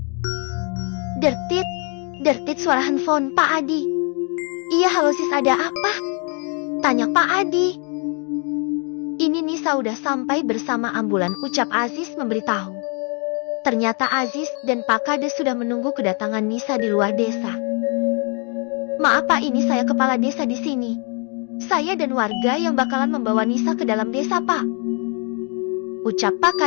Dertit suara handphone Pak Adi. Iya, halo sis, ada apa? Tanya Pak Adi. Ini Nisa udah sampai bersama ambulan, ucap Aziz memberitahu. Ternyata Aziz dan Pak Kades sudah menunggu kedatangan Nisa di luar desa. Maaf Pak, ini saya kepala desa di sini. Saya dan warga yang bakalan membawa Nisa ke dalam desa Pak, ucap Pak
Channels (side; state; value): right; quieter; 36.7 dB